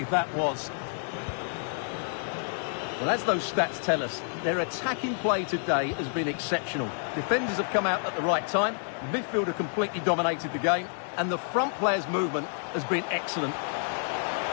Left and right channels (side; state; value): right; silent; 59 dB below the other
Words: that was. Well, as those stats tell us, their attacking play today has been exceptional. Defenders have come out at the right time. Midfield have completely dominated the game. And the front player's movement has been excellent.